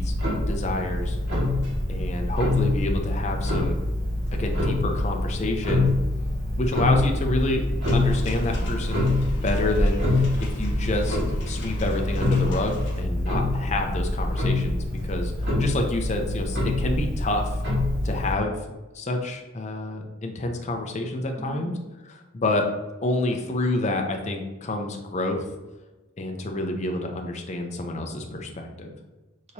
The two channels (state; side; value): normal; both; correlation 0.67